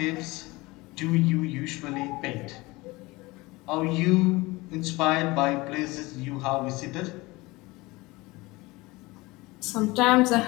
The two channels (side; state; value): right; quieter; 22.2 dB